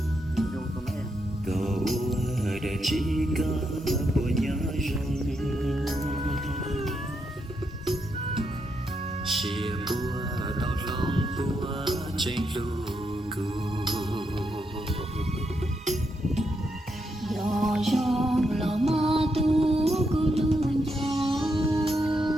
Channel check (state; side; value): normal; both; correlation 0.81